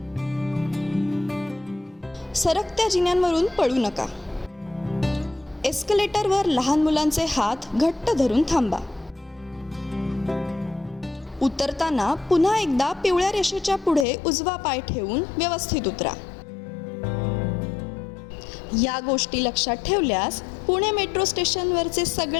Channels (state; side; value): drops out; right; at 14.1 s